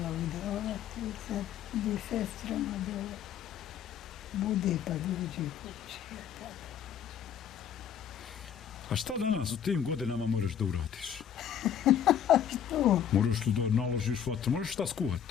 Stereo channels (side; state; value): right; quieter; 8.9 dB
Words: udavati, sad ide sestrama dole. Bude pa dođe kući. A šta danas u tim godinama moraš da uradiš? Što? Moraš li da naložiš vatru? Moraš šta skuhat?